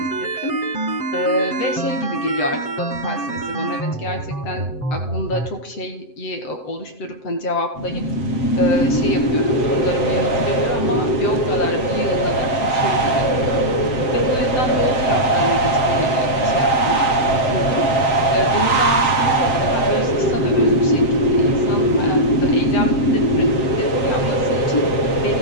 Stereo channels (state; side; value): late; right; 7.7 ms